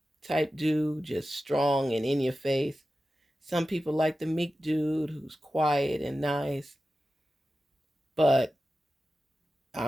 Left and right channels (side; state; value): both; normal; correlation 0.93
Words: type dude, just strong and in your face. Some people like the meek dude who's quiet and nice. But